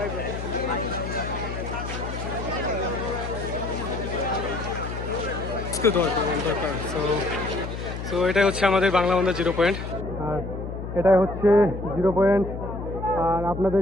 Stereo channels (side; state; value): left; noise; hum, 7 dB below the sound